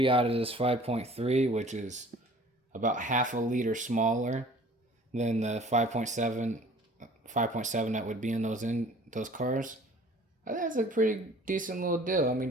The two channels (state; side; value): normal; both; correlation 0.50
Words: out of this 5.3, which is about half a liter smaller than the 5.7 that would be in those cars. I think that's a pretty decent little deal. I